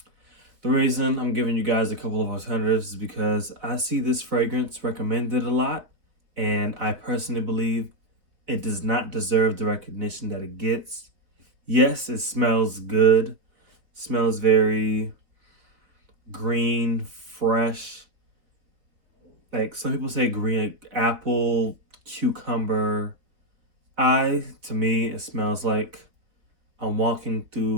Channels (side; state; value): left; late; 3.8 ms